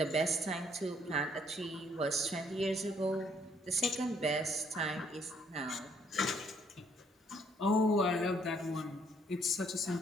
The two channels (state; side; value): normal; both; correlation 0.67